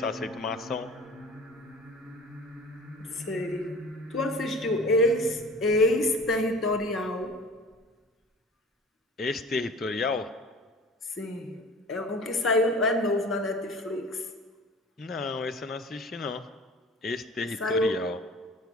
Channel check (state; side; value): normal; both; correlation 0.42